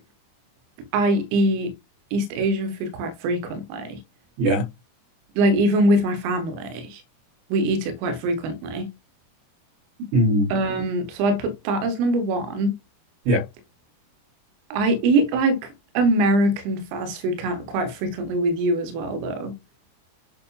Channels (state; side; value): late; left; 25 ms